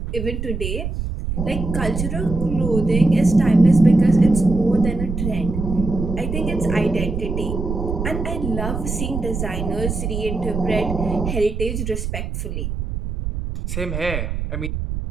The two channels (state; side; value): noise; right; rumble, 4 dB below the sound